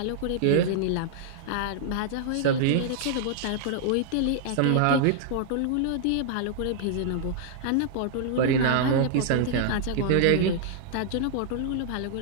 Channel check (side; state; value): both; different; correlation -0.01